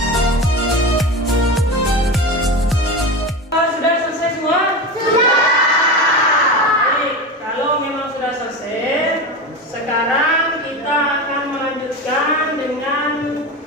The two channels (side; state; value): both; normal; correlation 0.24